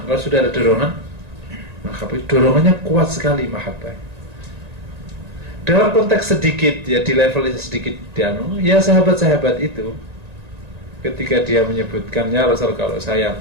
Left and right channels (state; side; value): late; left; 1.9 ms